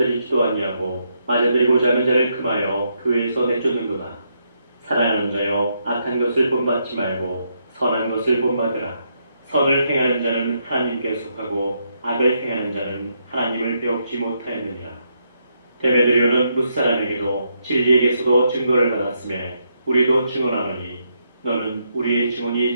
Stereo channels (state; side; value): inverted; both; correlation -0.78